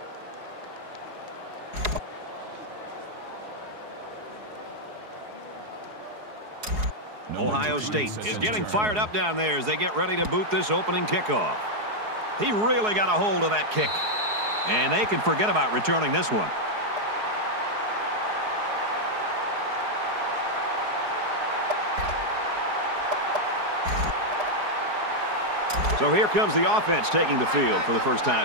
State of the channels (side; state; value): left; late; 4.7 ms